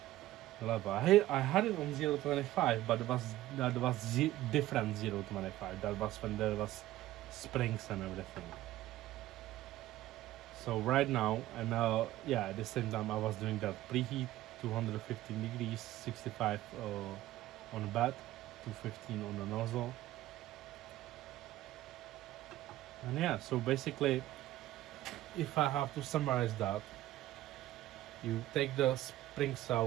the level. I had it on 0.25, but that was different 0.25. That was when there was springs and everything. So right now, and yeah, at the same time I was doing that preheat 215 degrees, 65 on the bed, 215 on the nozzle. And yeah, so basically, if I have to summarize that, you take the springs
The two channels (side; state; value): left; quieter; 15.2 dB